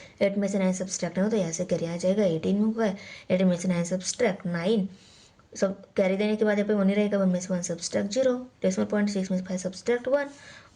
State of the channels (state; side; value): identical; both; correlation 1.00